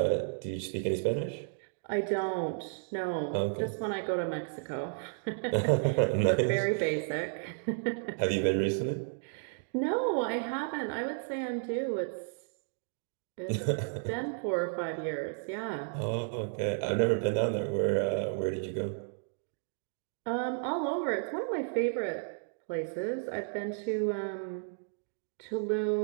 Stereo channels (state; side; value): silent; left; digital silence